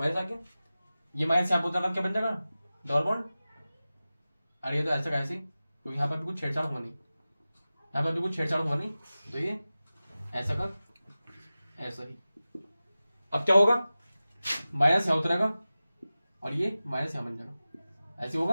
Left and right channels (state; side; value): inverted; both; correlation -0.96